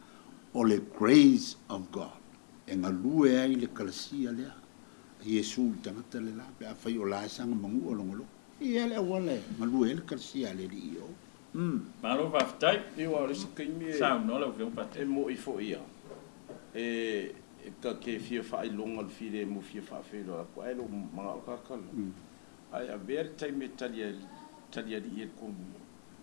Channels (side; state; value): right; silent; digital silence